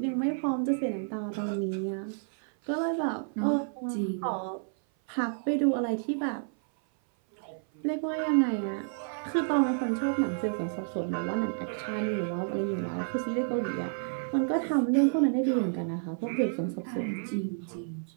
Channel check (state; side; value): silent; left; 56 dB below the other